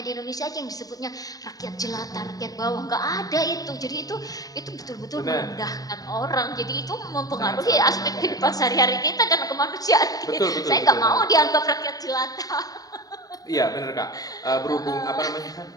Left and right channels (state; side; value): late; right; 0.18 ms